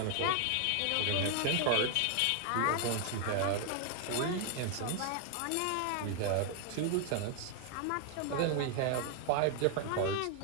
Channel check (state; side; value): different; both; correlation 0.00